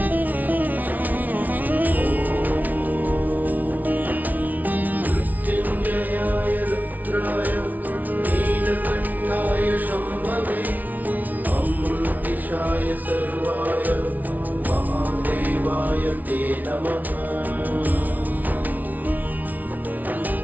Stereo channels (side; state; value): left; late; 0.077 ms